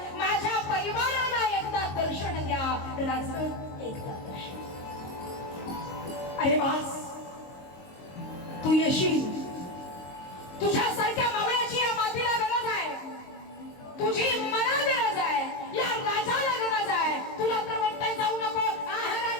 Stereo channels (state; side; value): late; right; 22 ms